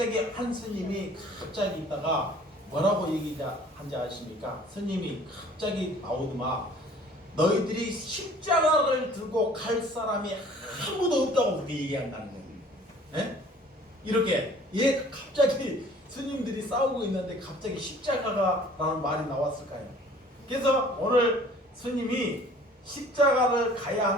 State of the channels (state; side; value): normal; both; correlation 0.52